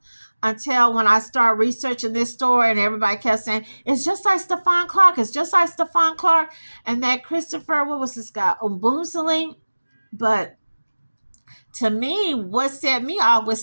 until when I started researching this story, and everybody kept saying, it's just like Stephon Clark. It's just like Stephon Clark. And that Christopher, what was this guy? Oboomsling. But to me, what set me off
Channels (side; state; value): both; inverted; correlation -1.00